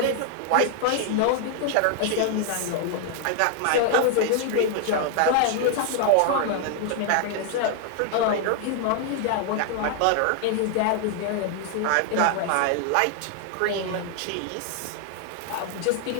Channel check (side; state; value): both; different; correlation 0.00